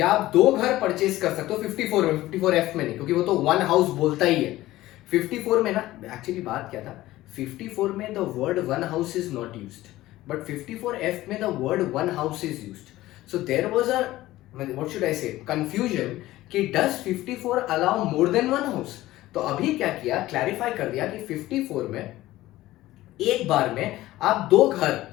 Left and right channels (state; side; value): quieter; right; 16.4 dB